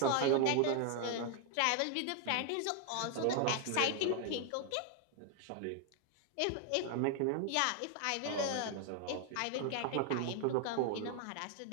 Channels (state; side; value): different; both; correlation 0.00